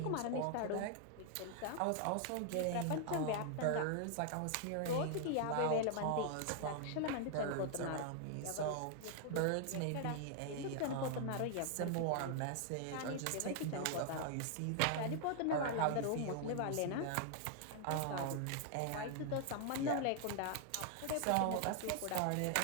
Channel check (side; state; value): both; different; correlation 0.00